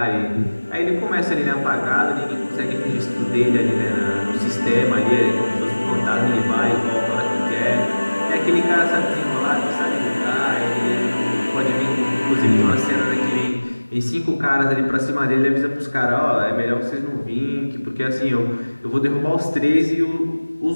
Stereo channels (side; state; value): both; inverted; correlation -1.00